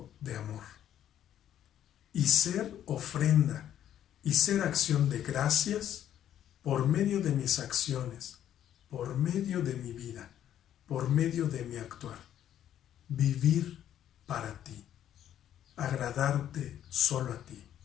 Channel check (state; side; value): quieter; right; 10.8 dB